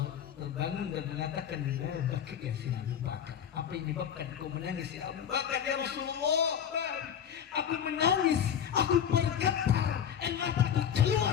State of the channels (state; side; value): quieter; right; 8.7 dB